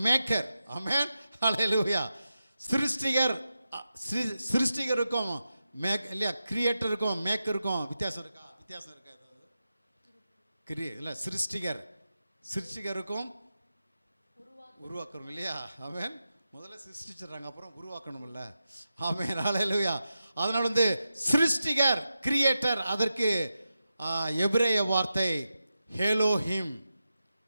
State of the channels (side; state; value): both; inverted; correlation -0.90